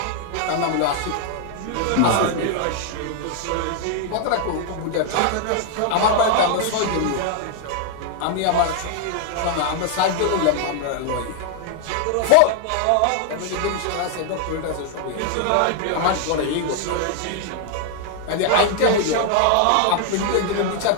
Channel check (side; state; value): both; different; correlation 0.00